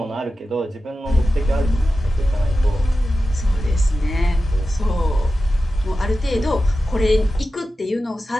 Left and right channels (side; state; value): both; normal; correlation 0.93